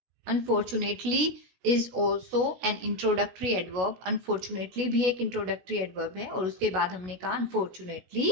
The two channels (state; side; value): late; left; 16 ms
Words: Unfortunately is also an introductory adverb. Unfortunately भी एक इंट्रोडक्टरी एडवर्ब है और उसके बाद हमने कहा unfortunately